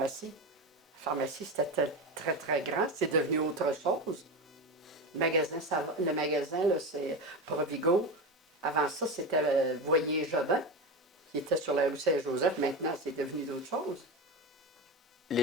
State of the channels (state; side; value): normal; both; correlation 0.20